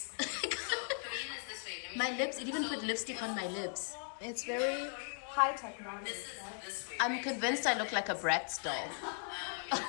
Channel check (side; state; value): right; silent; 52 dB below the other